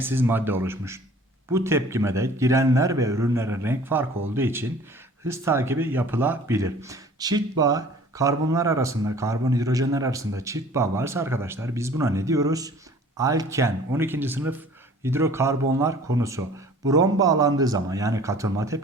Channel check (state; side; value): normal; both; correlation 0.49